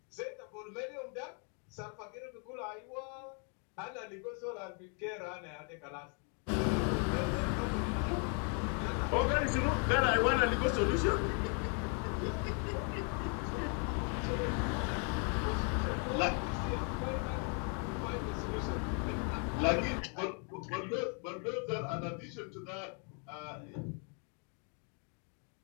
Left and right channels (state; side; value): quieter; right; 39.2 dB